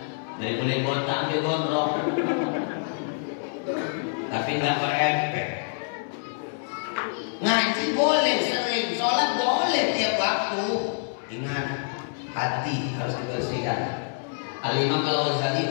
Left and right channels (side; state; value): right; silent; 61 dB below the other